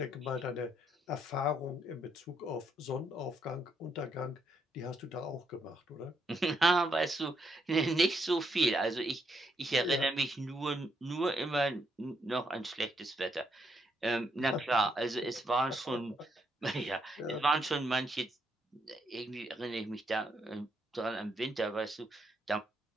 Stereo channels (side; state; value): both; normal; correlation 0.76